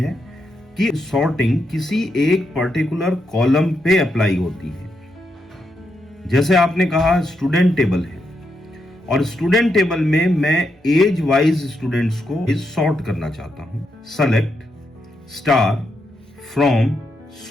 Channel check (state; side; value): normal; both; correlation 0.82